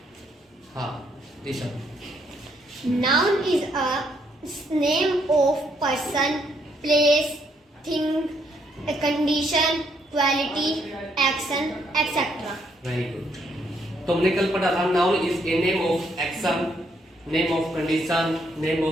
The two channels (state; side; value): normal; both; correlation 0.72